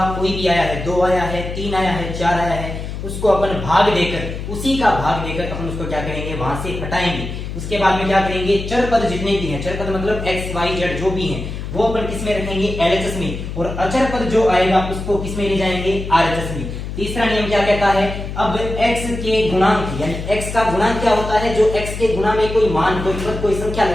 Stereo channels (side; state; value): left; noise; hum, 7 dB below the sound